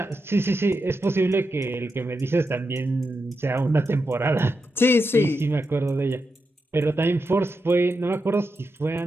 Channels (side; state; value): both; normal; correlation 0.87